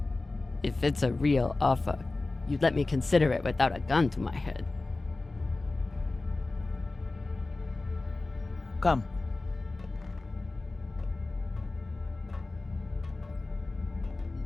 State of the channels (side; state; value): right; quieter; 3.2 dB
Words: If it's a real offer, you'd let me consider it without a gun to my head. Come.